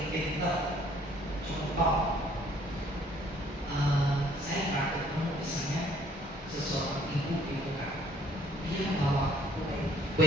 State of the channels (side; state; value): both; normal; correlation 0.61